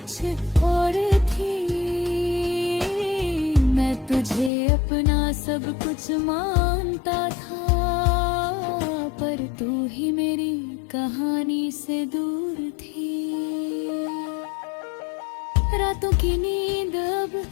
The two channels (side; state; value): right; drops out; at 4.5 s